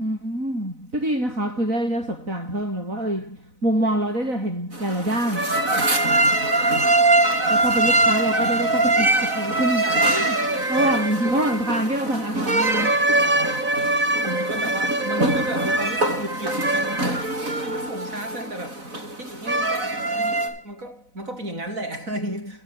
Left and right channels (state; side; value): late; left; 4.0 ms